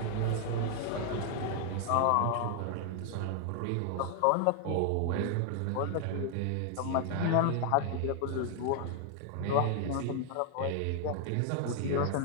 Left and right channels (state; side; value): different; both; correlation 0.00